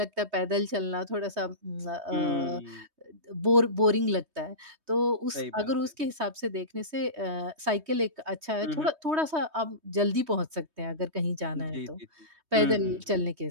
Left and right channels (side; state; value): left; late; 3.2 ms